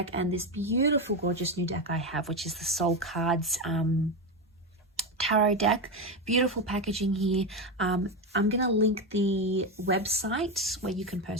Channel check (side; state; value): both; normal; correlation 0.13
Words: and this beautiful, gorgeous new deck I have, which is the Soul Cards tarot deck. Beautiful packaging here. I'm gonna link the website where you can